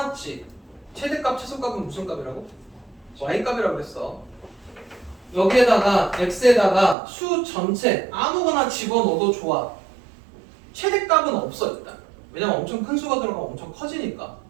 최대값, 최소값은 무슨 값이라고? y값이라고 그랬어. 여기에다가 x에다가 수 전체 아무거나 집어넣어도 좋아. 최대값은 없어 일단. 왜냐면 엄청 큰 수가 들어가면 엄청 커지니까.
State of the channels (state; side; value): drops out; left; at 7.0 s